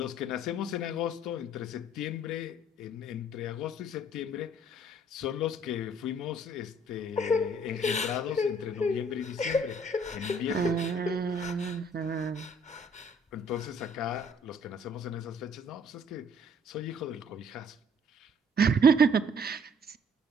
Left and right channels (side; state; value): both; normal; correlation 0.59